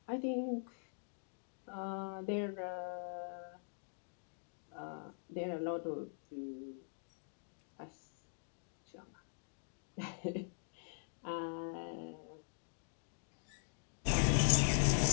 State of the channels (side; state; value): right; silent; digital silence